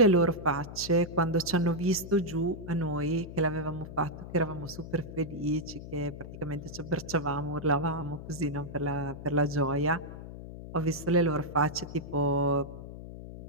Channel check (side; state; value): left; noise; hum, 12 dB below the sound